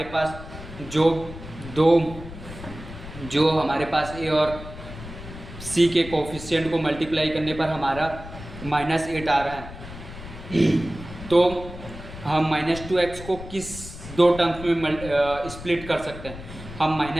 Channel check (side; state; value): left; noise; rumble, 13 dB below the sound